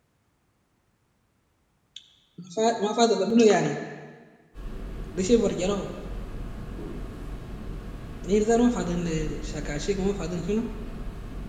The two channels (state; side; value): identical; both; correlation 1.00